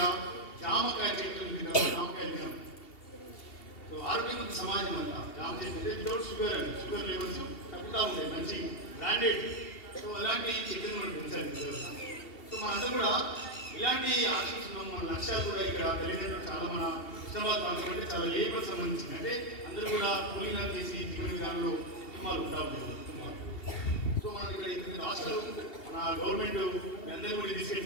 జామకాయ చెట్లు ఉంది కదా, జామకాయ తినాం. సో ఆరోగ్యవంత సమాజం అంతా జామ చెట్లు వితౌట్ షుగర్ అండి, షుగర్ లెవెల్స్ తగ్గుతూ ఉంటాయి, మంచి బ్రాండెడ్. సో అలాంటి చెట్లను మనం పెంచాలి. సో మనందరూ కూడా ఇలాంటి ఆశిస్తున్నాం. మన లక్ష్యాలు కూడా ఇక్కడ తల్లిదండ్రులు చాలా మన హుస్నాబాద్ ప్రాంతం అంటే చాలా లేబర్ సంబంధించింది, అంటే అందరూ కూడా కూలీనాలు చేసి జీవన విధానంలో కుటుంబాలు ఉంటా ఉంటారు కుటుంబాలు. సో మనకి ఇక్కడ రాష్ట్రాలు మన గవర్నమెంట్ అందరూ కూడా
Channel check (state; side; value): late; right; 2.7 ms